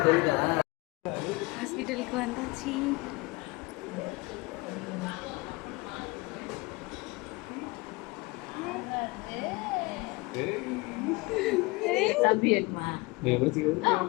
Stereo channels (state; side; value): quieter; right; 24.7 dB